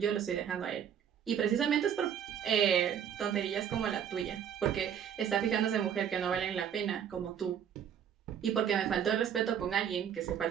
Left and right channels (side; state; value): left; quieter; 8.7 dB